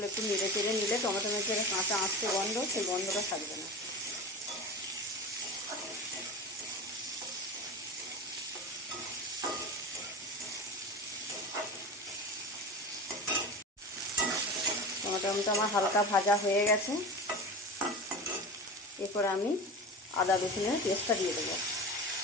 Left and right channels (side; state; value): both; normal; correlation 0.29